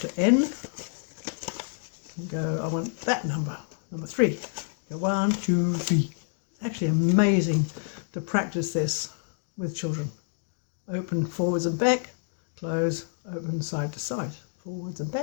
N, you go, I want that number, number 3. Go 1, 2, 3. It's actually amazing to practice this with children. Open forwards and back, close, open side to side, forwards and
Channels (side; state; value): right; silent; digital silence